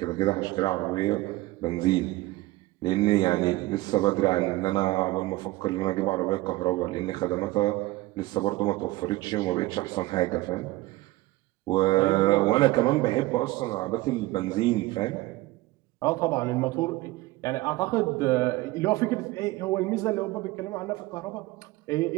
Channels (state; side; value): quieter; left; 19.1 dB